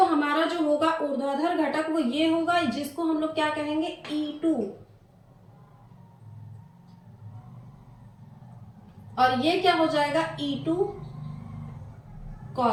हमारा जो होगा ऊर्ध्वाधर घटक वो ये होगा, जिसको हम लोग क्या कहेंगे, E2। और ये क्या हो जाएगा, E2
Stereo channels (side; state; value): both; identical; correlation 1.00